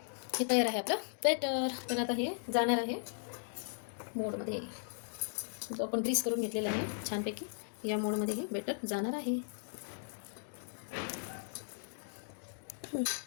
हे तयार आहे आपलं बॅटर. तर आता हे जाणार आहे मोडमध्ये. जो आपण ग्रीस करून घेतलेलं आहे छानपैकी, या मोडमध्ये हे बॅटर जाणार आहे.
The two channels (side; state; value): right; silent; digital silence